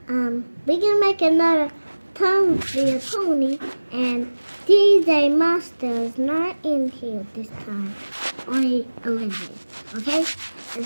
we can make another Tom via Pony, and DJ Master is not in here this time. Only Olivia, okay? And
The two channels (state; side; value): inverted; both; correlation -1.00